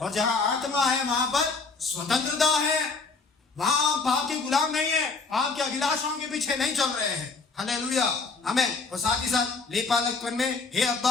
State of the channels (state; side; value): quieter; right; 4.3 dB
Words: और जहां आत्मा है वहां पर स्वतंत्रता है, वहां पाप के गुलाम नहीं है, पाप के अभिलाषाओं के पीछे नहीं चल रहे हैं। हालेलुया, आमीन। और साथ ही साथ लेपालकपन में हे